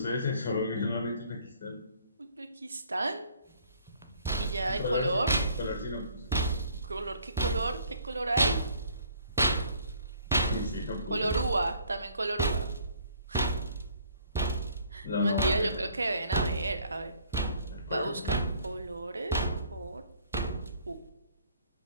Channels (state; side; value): inverted; both; correlation -0.59